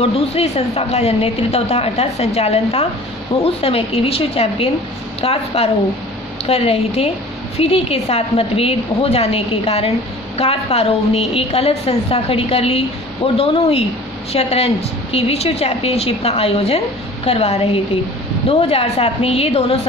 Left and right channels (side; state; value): both; normal; correlation 0.45